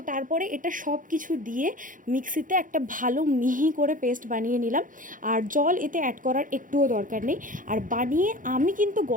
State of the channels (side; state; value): left; late; 0.39 ms